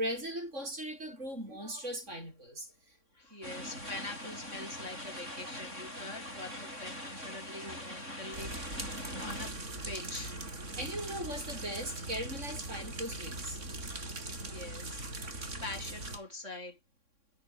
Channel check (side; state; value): left; late; 3.6 ms